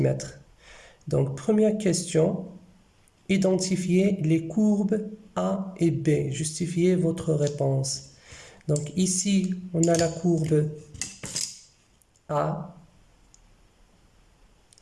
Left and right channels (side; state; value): both; identical; correlation 1.00